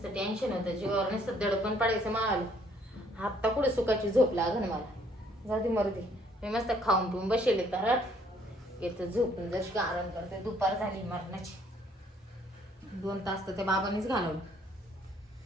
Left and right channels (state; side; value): normal; both; correlation 0.64